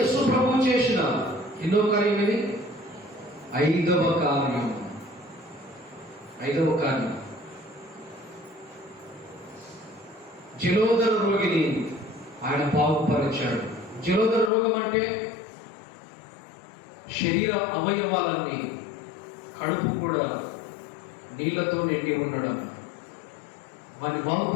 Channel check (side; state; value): right; drops out; at 14.5 s